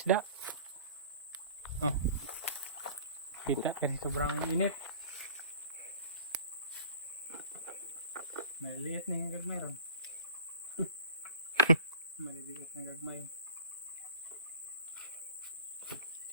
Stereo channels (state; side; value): inverted; both; correlation -0.42